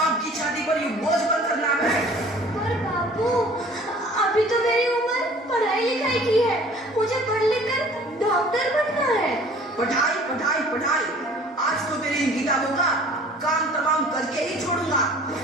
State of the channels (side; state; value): both; normal; correlation 0.50